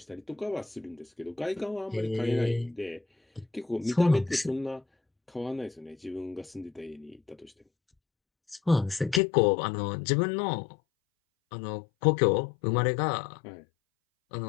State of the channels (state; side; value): drops out; right; at 9.2 s